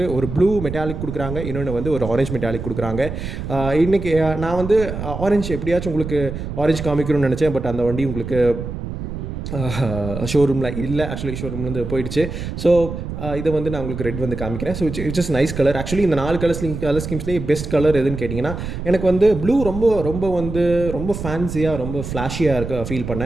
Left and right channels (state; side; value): noise; right; rumble, 7 dB below the sound